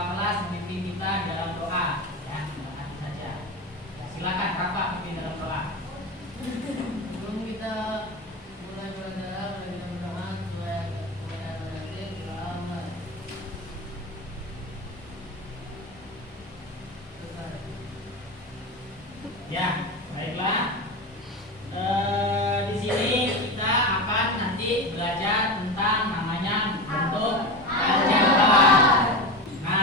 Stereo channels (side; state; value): both; normal; correlation 0.23